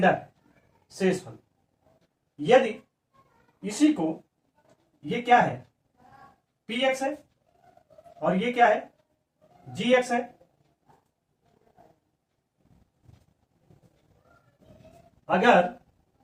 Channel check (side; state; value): both; identical; correlation 1.00